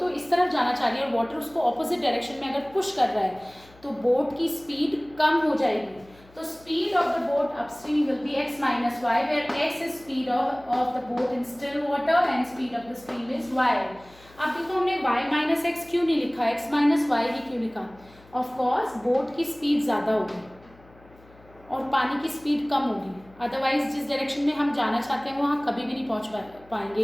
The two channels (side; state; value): left; noise; hum, 25 dB below the sound